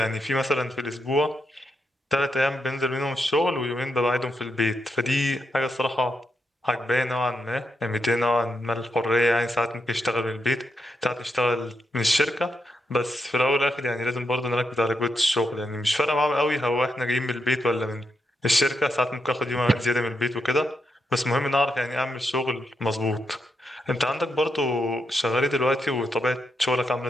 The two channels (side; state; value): both; normal; correlation 0.82